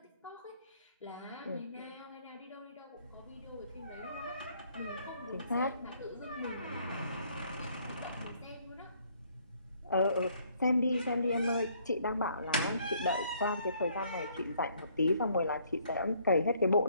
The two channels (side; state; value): both; inverted; correlation -0.65